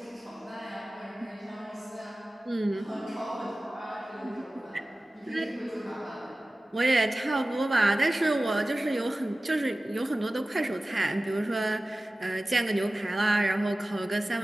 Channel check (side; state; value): both; normal; correlation 0.97